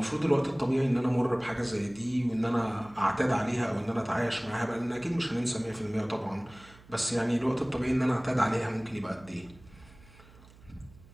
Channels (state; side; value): noise; right; hum, 23 dB below the sound